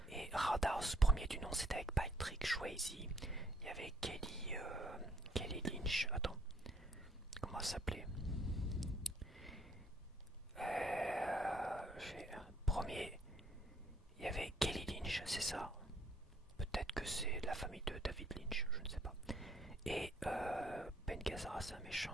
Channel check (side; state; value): both; normal; correlation 0.66